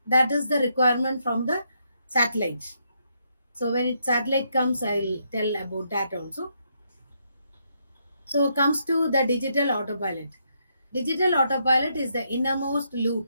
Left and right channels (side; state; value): both; inverted; correlation -0.77